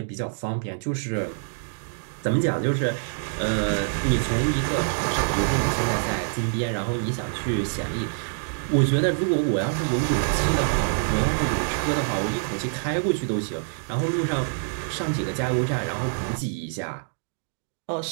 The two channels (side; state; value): left; silent; digital silence